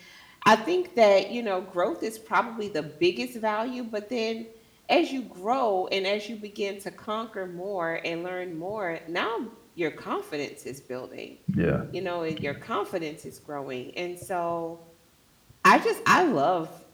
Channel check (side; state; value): both; identical; correlation 1.00